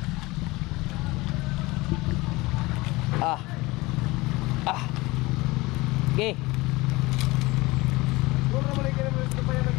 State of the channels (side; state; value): right; quieter; 21.9 dB